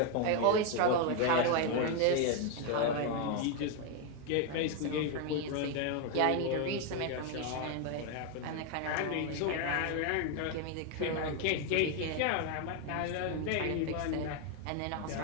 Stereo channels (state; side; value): different; both; correlation 0.01